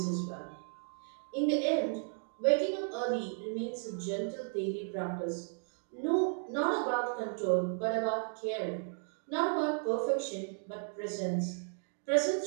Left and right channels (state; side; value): silent; left; 55 dB below the other